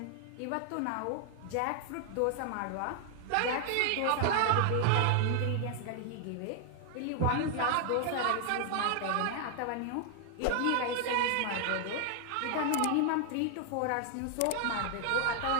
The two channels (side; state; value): both; different; correlation 0.00